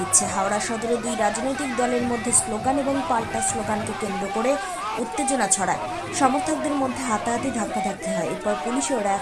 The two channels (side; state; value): both; identical; correlation 1.00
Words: হাওড়া সদরে দুই রাজনৈতিক দলের মধ্যে স্লোগান এবং পাল্টা স্লোগানকে কেন্দ্র করে উত্তেজনা ছড়ায়। সমর্থকদের মধ্যে হাতাহাতি ধাক্কাধাক্কি হয়। এরপর পুলিশ ও